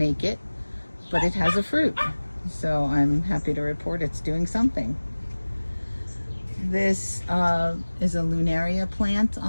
it, but it has a fruit. So I'm happy to report it's doing something. This is a lunaria plant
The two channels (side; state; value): both; inverted; correlation -1.00